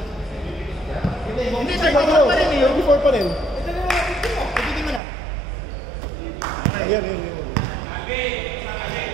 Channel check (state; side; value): drops out; left; at 5.0 s